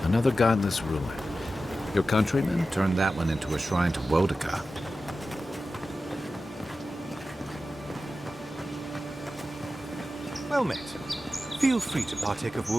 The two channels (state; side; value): normal; both; correlation 0.93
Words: Another godless ruin. Your countrymen turned that one into a shrine to Wodaka. Well met. Feel free to partake of